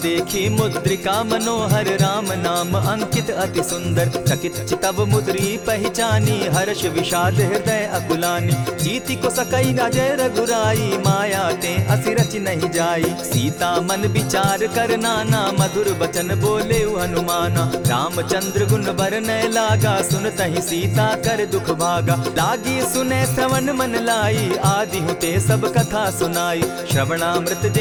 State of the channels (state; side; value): identical; both; correlation 1.00